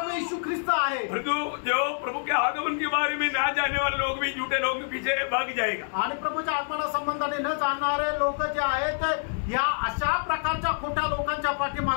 येशू ख्रिस्त आहे. परंतु जो प्रभु के आगमन के बारे में ना जानने वाले लोग भी झूठे लोगों के पीछे भाग जाएगा. आणि प्रभूच्या आगमना संबंधाने न जाणणारे लोक जे आहेत ते या अशा प्रकारच्या खोट्या लोकांच्या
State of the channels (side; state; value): right; silent; digital silence